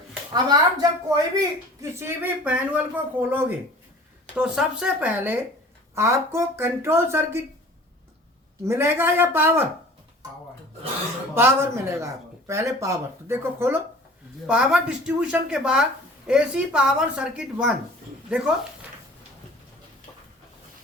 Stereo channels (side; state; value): both; normal; correlation 0.46